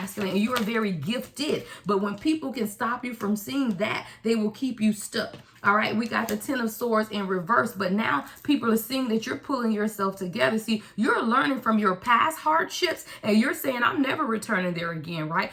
and you are very gifted. But when people can stop you from seeing that, they will keep you stuck. All right, we got the Ten of Swords in reverse, but now people are seeing that you're pulling yourself together. See, you're learning from your past hardships and you're saying, I'm never returning there again, right?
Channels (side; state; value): both; identical; correlation 1.00